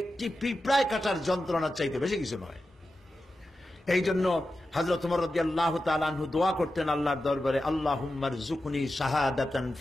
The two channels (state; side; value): normal; both; correlation 0.92